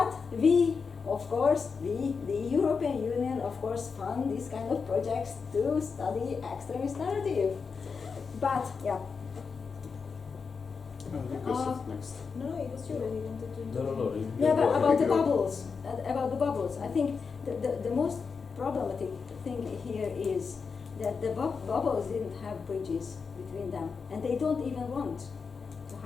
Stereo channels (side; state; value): right; quieter; 5.3 dB